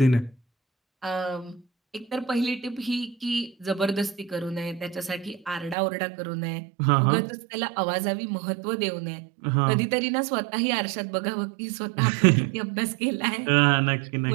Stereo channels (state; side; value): drops out; left; at 5.8 s